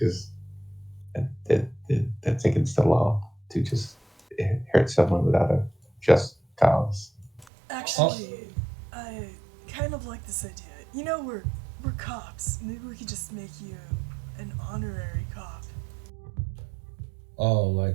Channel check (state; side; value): drops out; left; at 7.5 s